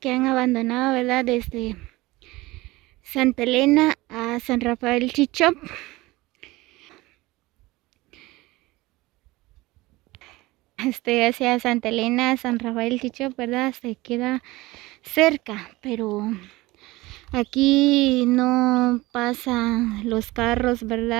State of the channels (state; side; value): quieter; left; 20.4 dB